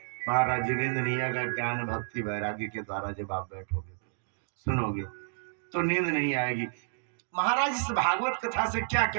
महाराज नींद नहीं आएगा। ज्ञान भक्ति वैराग्य के द्वारा जब आप बैठोगे सुनोगे तो नींद नहीं आएगी। महाराज इस भागवत कथा से क्या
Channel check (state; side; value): silent; left; digital silence